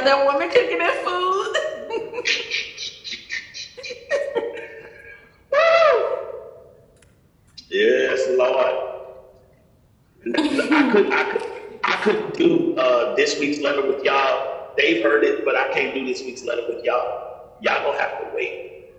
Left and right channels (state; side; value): identical; both; correlation 1.00